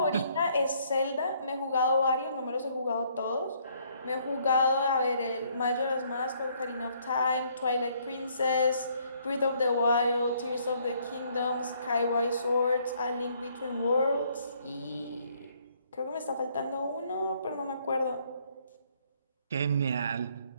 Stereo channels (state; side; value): inverted; both; correlation -0.66